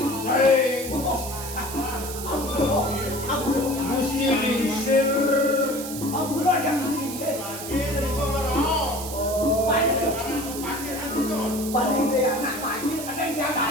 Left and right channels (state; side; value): noise; right; hiss, 9 dB below the sound